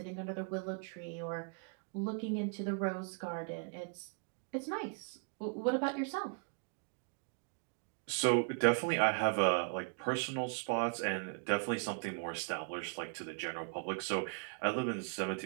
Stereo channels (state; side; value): quieter; left; 36.0 dB